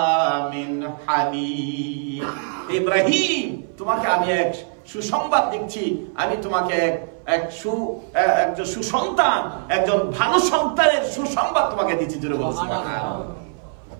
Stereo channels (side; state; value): left; silent; 59 dB below the other